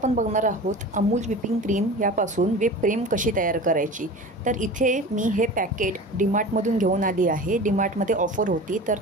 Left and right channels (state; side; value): normal; both; correlation 0.35